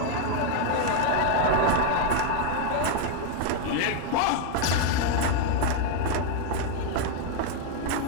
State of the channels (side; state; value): both; different; correlation 0.00